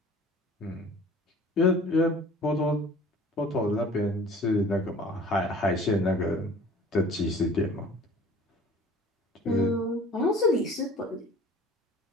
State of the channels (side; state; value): both; normal; correlation 0.47